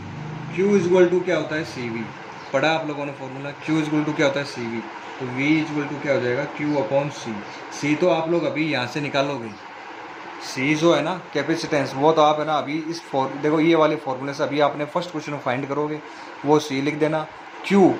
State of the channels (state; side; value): identical; both; correlation 1.00